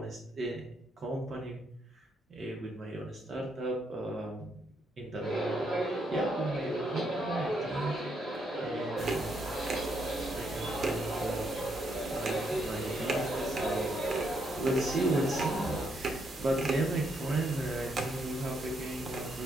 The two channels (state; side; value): normal; both; correlation 0.76